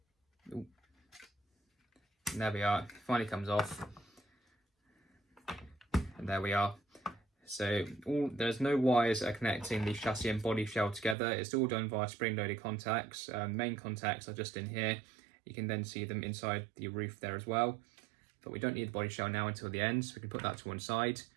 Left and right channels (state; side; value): drops out; left; at 11.2 s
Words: Ooh. And there we are. It finally comes off. And there we are. So there's no wires that are connecting the chassis and body shell together. It's all done via spring-loaded contacts. Main contacts are just in here. You can then see them inside the roof there as well. But we don't need the body shell now until the end, so we can put that to one side.